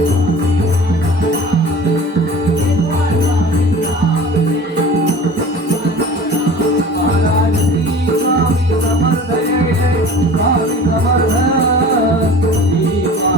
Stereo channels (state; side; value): normal; both; correlation 0.41